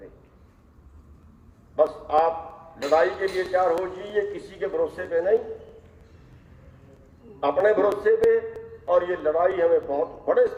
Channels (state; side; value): identical; both; correlation 1.00